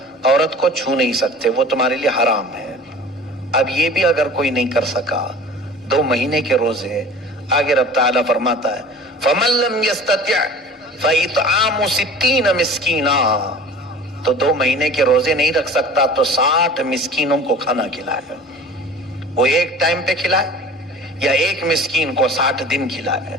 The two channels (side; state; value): both; normal; correlation 0.43